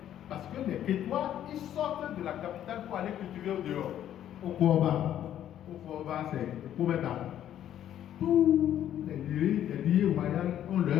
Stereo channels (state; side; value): quieter; right; 11.1 dB